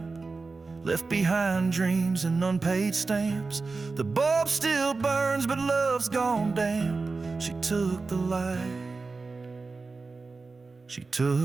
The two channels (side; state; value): left; quieter; 4.0 dB